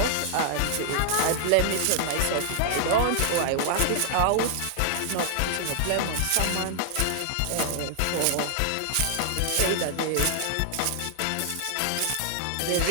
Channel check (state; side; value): different; both; correlation 0.00